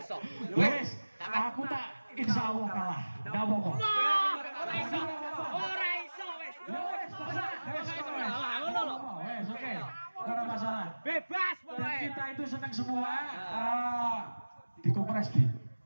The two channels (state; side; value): inverted; both; correlation -1.00